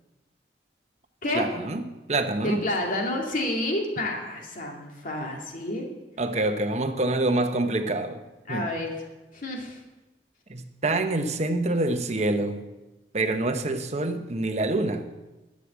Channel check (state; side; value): normal; both; correlation 0.36